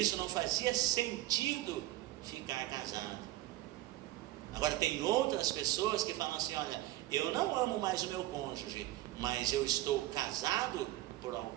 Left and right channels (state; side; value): quieter; left; 16.0 dB